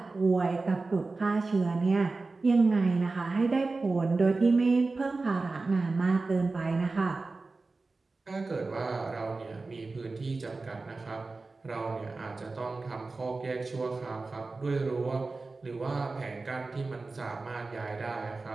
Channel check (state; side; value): quieter; left; 3.7 dB